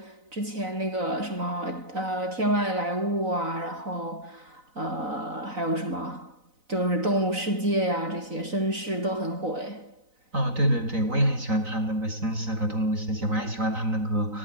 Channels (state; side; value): late; left; 4.0 ms